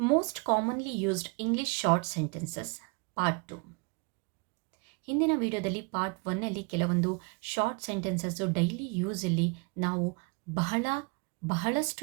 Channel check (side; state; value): left; quieter; 31.9 dB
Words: commonly used English short sentences part 2. ಹಿಂದಿನ ವಿಡಿಯೋದಲ್ಲಿ ಪಾರ್ಟ್ 1ಅಲ್ಲಿ ಕೆಲವೊಂದು short sentences daily ಯೂಸಲ್ಲಿ ನಾವು